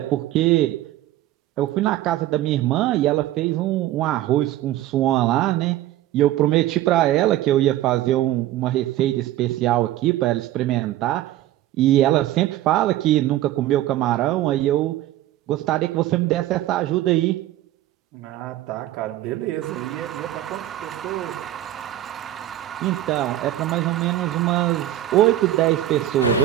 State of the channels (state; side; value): quieter; left; 14.0 dB